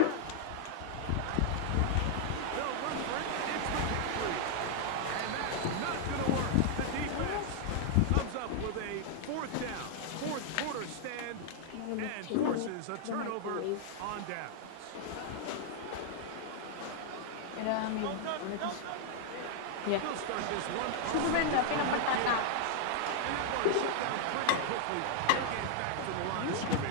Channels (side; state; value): both; different; correlation 0.00